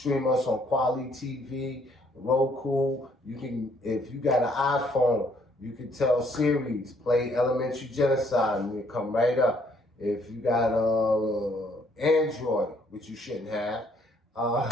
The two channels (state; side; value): normal; both; correlation 0.66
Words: us on Quality TV, Roku. You can, if you got an iPhone, you can tell Siri, play Elementary Genocide, and it'll come right up. If you got Android, which you shouldn't have,